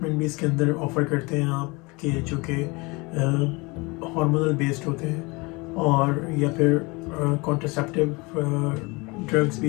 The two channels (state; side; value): quieter; right; 26.1 dB